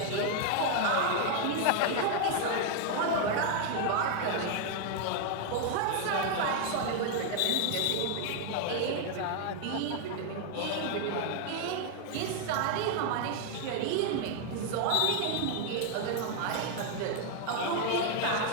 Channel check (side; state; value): both; different; correlation 0.00